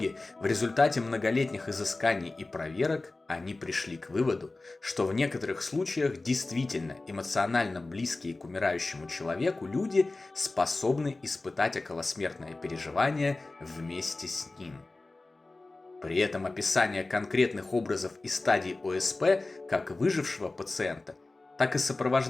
в результате многолетних изысканий и проверок, они пришли к выводу, что в некоторых случаях действительно эмоционально близкие к умирающему человеку люди способны испытать околосмертное переживание вместе с ним. При этом описание конкретных образов и стадий ОСП как выжившего пациента, так и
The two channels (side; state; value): right; quieter; 3.2 dB